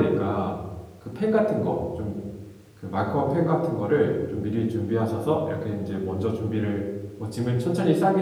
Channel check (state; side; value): identical; both; correlation 1.00